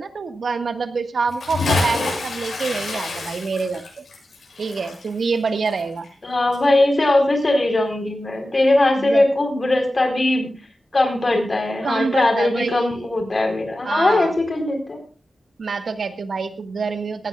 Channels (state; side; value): normal; both; correlation 0.92